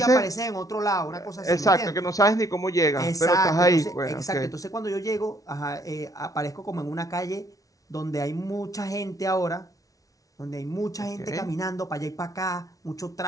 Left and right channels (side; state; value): right; late; 0.17 ms